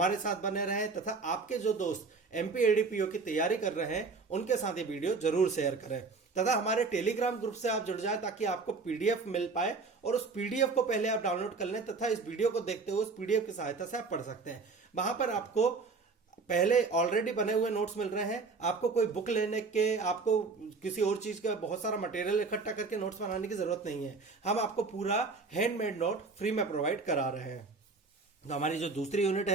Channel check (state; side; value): quieter; left; 4.3 dB